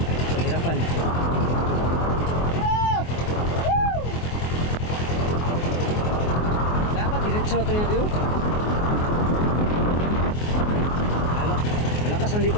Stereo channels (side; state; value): right; late; 24 ms